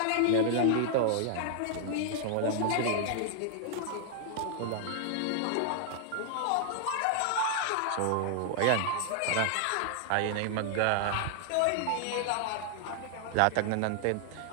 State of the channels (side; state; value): both; different; correlation -0.01